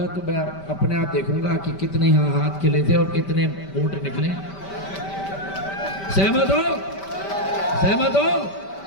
तो मैं अपने आप देखूंगा कि कितने यहाँ हाथ खिले थे और कितने वोट निकले। सहमत हो? सहमत हो?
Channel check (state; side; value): late; right; 5.1 ms